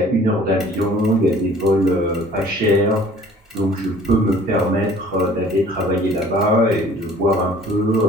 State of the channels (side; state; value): both; normal; correlation 0.51